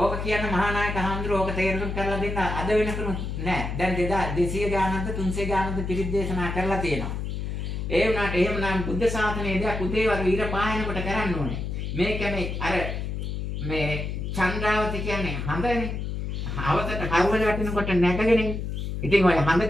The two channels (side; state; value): left; noise; hum, 4 dB below the sound